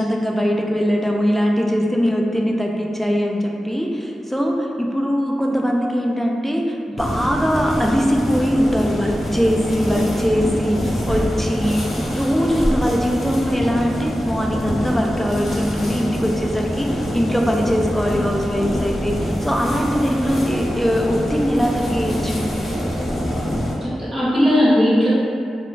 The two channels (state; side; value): normal; both; correlation 0.93